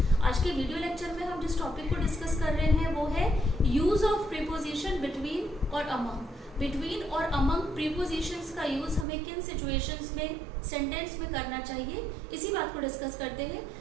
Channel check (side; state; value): left; drops out; at 9.1 s